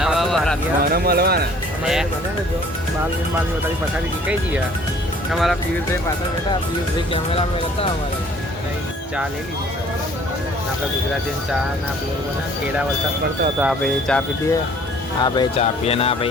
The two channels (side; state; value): both; normal; correlation 0.55